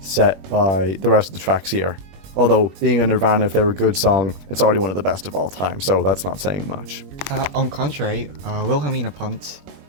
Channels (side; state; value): left; late; 21 ms